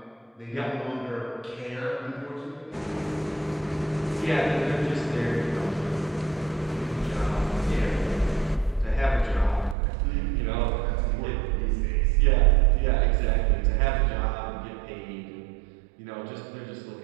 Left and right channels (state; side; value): drops out; left; at 9.8 s